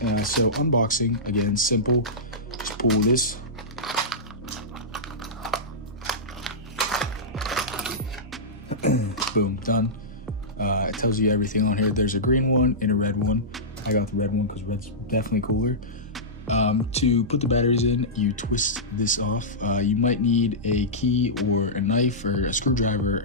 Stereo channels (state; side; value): normal; both; correlation -0.15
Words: So unboxing, again, simple. Just pull this. Boom, done. It tells you everything on here. There's a green one and a red one. I got the red one because red's definitely cooler. To put the batteries in, you twist this off. You might need a key or a knife or a screwdriver.